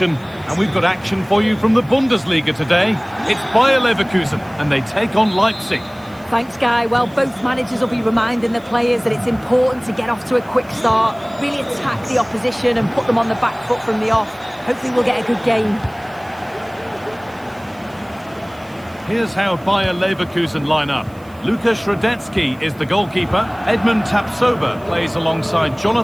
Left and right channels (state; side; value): noise; right; hiss, 28 dB below the sound